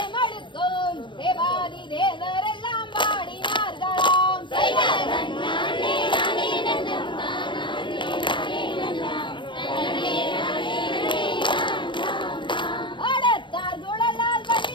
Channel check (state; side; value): late; right; 0.23 ms